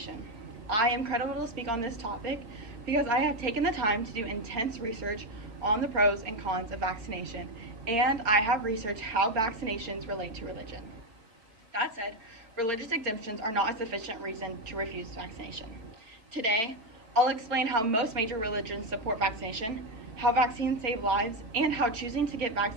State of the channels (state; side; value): late; left; 4.6 ms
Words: I am credible to speak on this topic because I have taken the time to do intense research on the pros and cons of vaccination, and I have researched how vaccinations relate to religion. That said, religious exemptions are not a sufficient reason to refuse vaccination. Today, I'll explain how most major religions support vaccination, how vaccines save lives, and how choosing to get